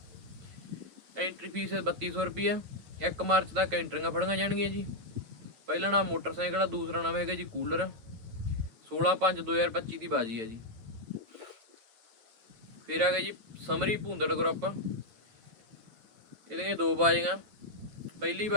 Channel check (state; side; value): late; left; 9.2 ms